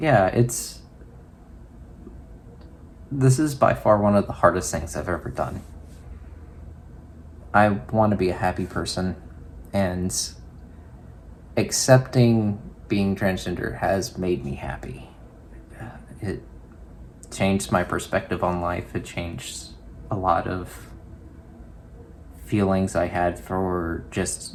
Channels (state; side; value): identical; both; correlation 1.00